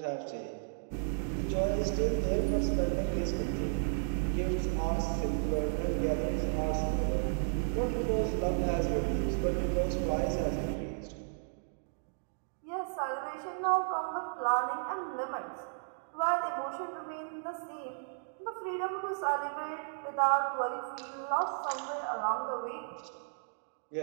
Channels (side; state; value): left; silent; digital silence